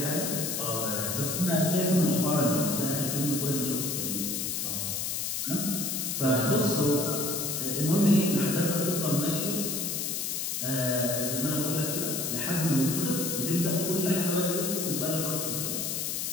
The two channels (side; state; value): left; noise; hiss, 1 dB below the sound